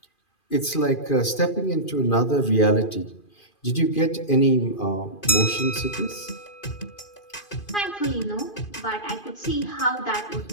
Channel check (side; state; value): right; late; 2.5 ms